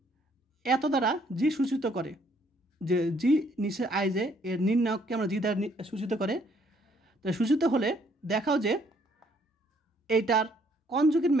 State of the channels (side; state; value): both; normal; correlation 0.66